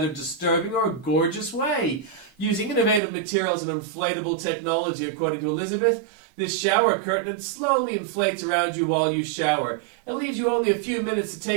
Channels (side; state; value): left; drops out; at 3.0 s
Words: disturbing or gorgeous way. Using innovative materials and inflatable technology, according to Elizabeth, this shower curtain slowly inflates around you while you shower. It leaves you only a few minutes to